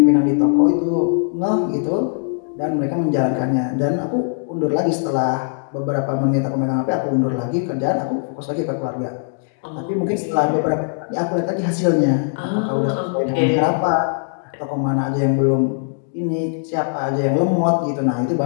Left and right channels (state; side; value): silent; right; digital silence